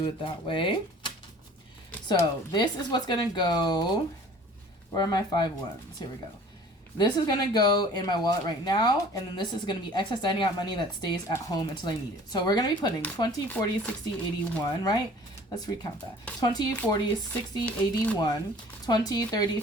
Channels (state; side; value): normal; both; correlation 0.49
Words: it that way. So this is what's going to go. Where are my 5 ones? Here we go. This is going to go in my wallet right now, and then this is going to be excess dining out money that stays at home until I need it. So we're going to be putting 20, 40, 60, 81, right? Let's recount that. 20, 40, 60, 81, 20, 30,